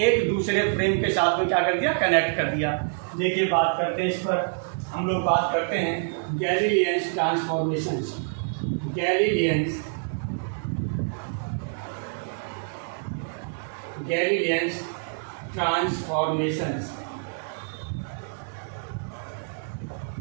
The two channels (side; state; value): left; silent; digital silence